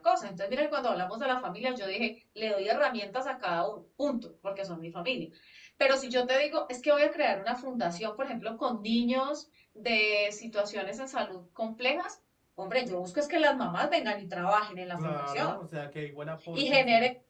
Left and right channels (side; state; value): both; identical; correlation 1.00